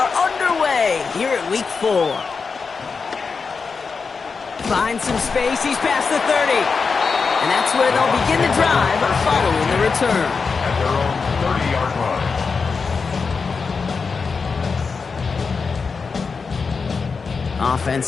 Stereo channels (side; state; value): right; quieter; 5.0 dB